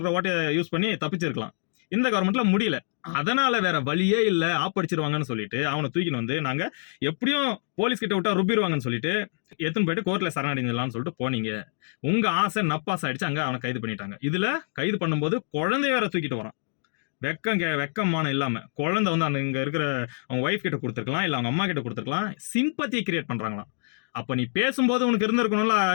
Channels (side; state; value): right; silent; digital silence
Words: ஓட்டையை யூஸ் பண்ணி தப்பிச்சிருக்கலாம். இந்த கவர்மெண்ட்ல முடியல, அதனால வேற வழியே இல்ல, ஆப்படிச்சிருவாங்கன்னு சொல்லிட்டு அவனை தூக்கின்னு வந்து நாங்க எப்படியும் போலீஸ் கிட்ட விட்டா ருப்பிடுவாங்கன்னு சொல்லிட்டு எடுத்துன்னு போயிட்டு கோர்ட்ல சரணடைஞ்சலாம்னு சொல்லிட்டு போனீங்க. உங்க ஆசை நப்பாசை ஆயிடுச்சு, அங்க அவனை கைது பண்ணிட்டாங்க. இதுல கைது பண்ணும்போது குழந்தைய வேற தூக்கிட்டு வரான். வெக்கமான இல்லாம குழந்தை வந்து அந்த இங்க இருக்கிற அவங்க ஒய்ஃப் கிட்ட கொடுத்துருக்கலாம், இல்ல அவங்க அம்மா கிட்ட கொடுத்துருக்கலாம். சிம்பத்தியை கிரியேட் பண்றாங்களாம். அப்ப நீ பேசும்போது உனக்கு இருந்திருக்கணும்ல